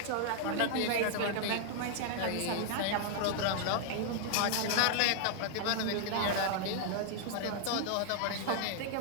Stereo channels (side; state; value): both; different; correlation 0.00